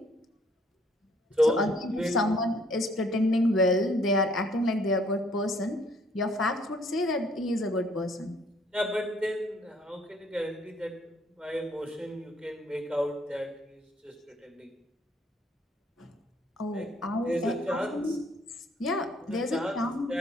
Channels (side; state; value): both; normal; correlation 0.63